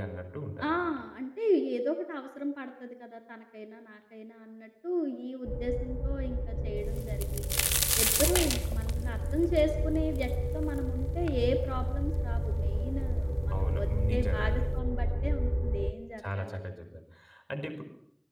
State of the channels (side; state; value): both; identical; correlation 1.00